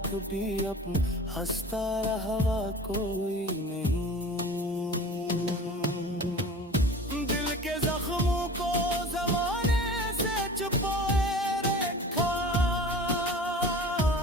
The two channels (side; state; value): both; normal; correlation 0.40